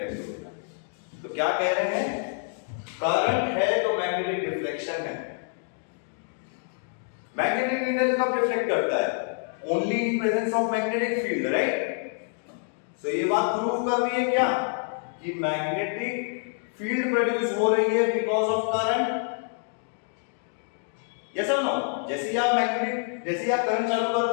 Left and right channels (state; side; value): silent; right; 57 dB below the other